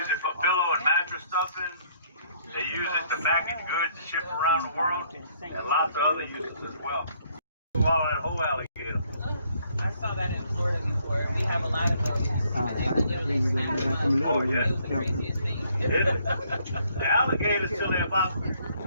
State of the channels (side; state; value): both; inverted; correlation -0.66